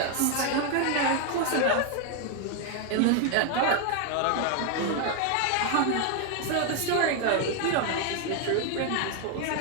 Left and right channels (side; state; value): both; different; correlation 0.01